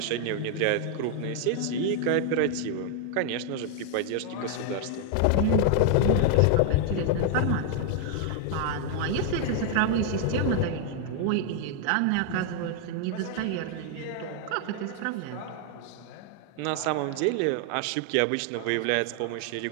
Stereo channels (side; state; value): both; different; correlation 0.00